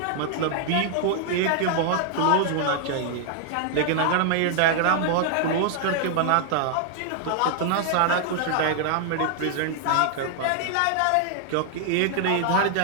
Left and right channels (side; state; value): both; different; correlation 0.00